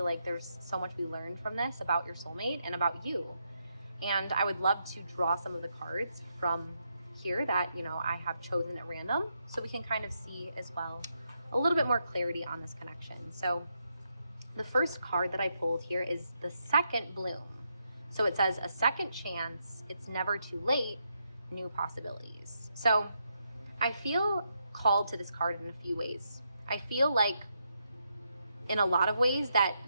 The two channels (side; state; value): both; inverted; correlation -0.81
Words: like there's so much we learned from this about your soulmate and about you. And I would love to draw some of the cards from here that, you know, I have chosen at random, so we can kind of see as well a little bit more clarity on this connection. So the first card that I pulled here is the second bloom. So it says, a second chance, it's never too late, new possibilities. So I feel called to this card in a few ways. I feel like in a lot of ways that